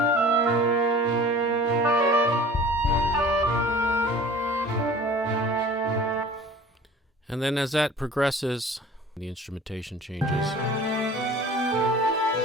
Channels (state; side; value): normal; both; correlation 0.44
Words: And then as that progresses, the instrumentation changes.